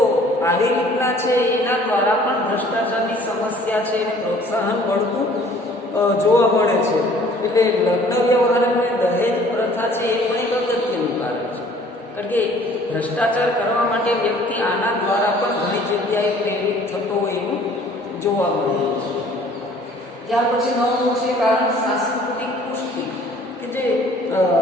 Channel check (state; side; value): normal; both; correlation 0.54